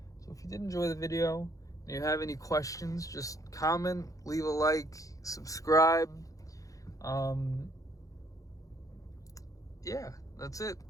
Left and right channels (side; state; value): right; late; 0.16 ms